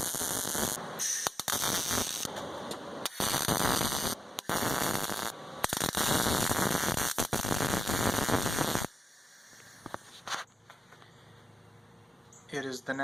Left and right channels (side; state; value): both; normal; correlation 0.91